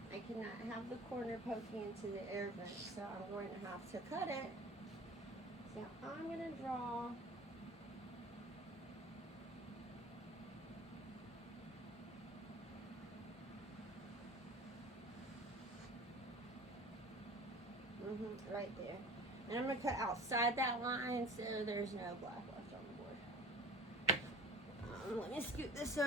I cannot have the corner poking into the air vent, so I'm going to have to cut it. So I'm going to draw right there. And I'm going to cut outside that line so there's no black left on the board. Let me scoot this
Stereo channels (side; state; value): both; normal; correlation 0.41